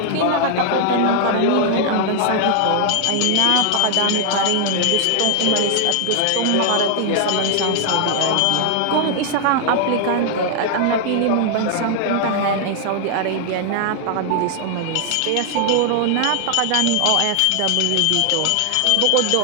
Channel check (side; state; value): both; different; correlation 0.00